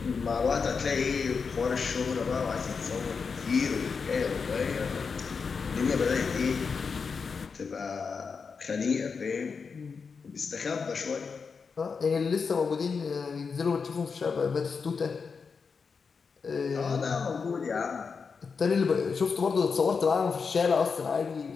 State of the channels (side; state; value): right; quieter; 5.4 dB